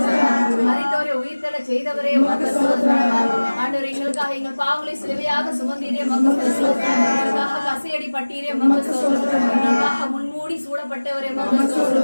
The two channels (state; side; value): inverted; both; correlation -1.00